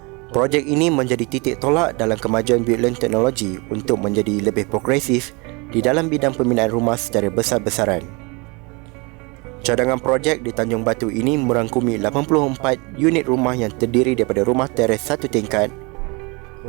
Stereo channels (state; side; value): quieter; left; 28.7 dB